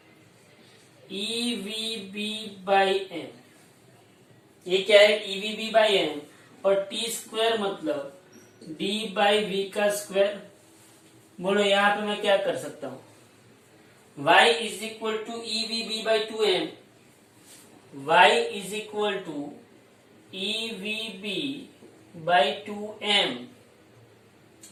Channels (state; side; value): identical; both; correlation 1.00